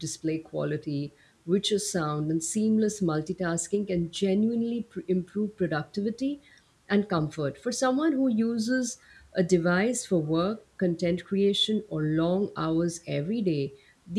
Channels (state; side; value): identical; both; correlation 1.00